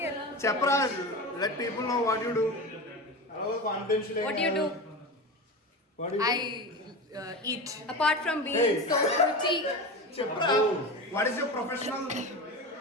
here. చెప్పరా, let people know what you do. Confidential. What do you do? What do you I eat. Apart from being so pretty. చెప్పరా, what is your professional?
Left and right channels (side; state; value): both; normal; correlation 0.25